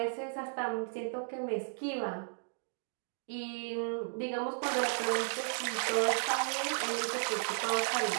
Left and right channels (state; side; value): silent; left; 55 dB below the other